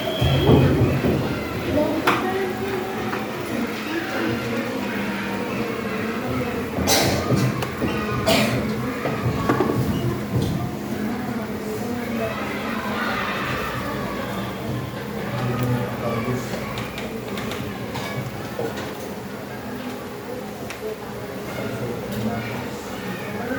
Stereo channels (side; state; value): both; identical; correlation 1.00